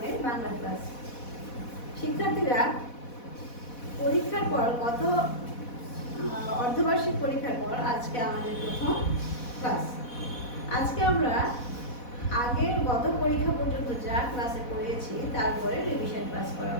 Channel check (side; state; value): right; late; 4.1 ms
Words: বাংলা ক্লাস। শিক্ষার্থীরা পরীক্ষার পর অর্ধবার্ষিক পরীক্ষার পর আজকে আমাদের প্রথম ক্লাস। আজকে আমরা গত পরীক্ষা পর্যন্ত যা ক্লাসে পড়িয়েছি তারপরে রিভিশন ক্লাস